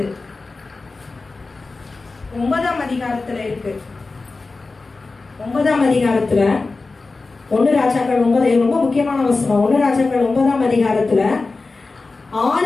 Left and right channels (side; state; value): right; quieter; 3.7 dB